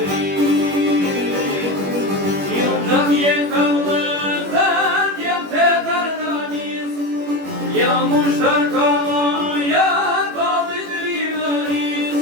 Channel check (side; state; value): left; late; 21 ms